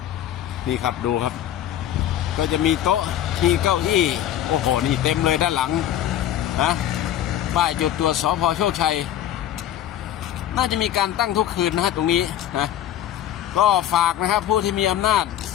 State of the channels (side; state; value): right; quieter; 11.4 dB